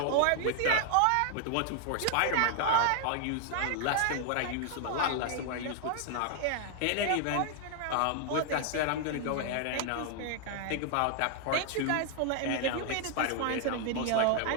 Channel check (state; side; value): different; both; correlation 0.00